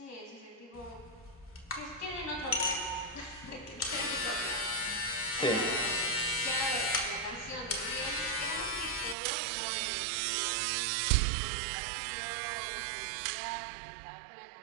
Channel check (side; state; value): left; drops out; at 9.2 s